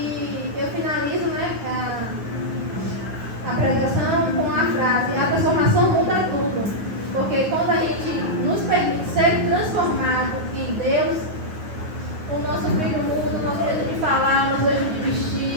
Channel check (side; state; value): left; late; 9.5 ms